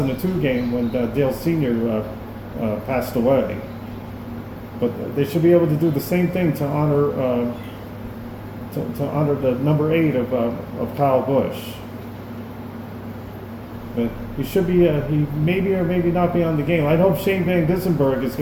game when Dale Sr. Passed away. But they should be able to do the same thing to honor the number 8 of Kyle Busch. But he should be, he maybe or maybe not be on the game. I hope Shane Van Gissenberg is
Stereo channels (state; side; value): identical; both; correlation 1.00